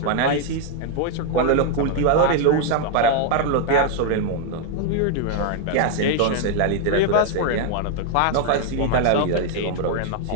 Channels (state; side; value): different; both; correlation 0.00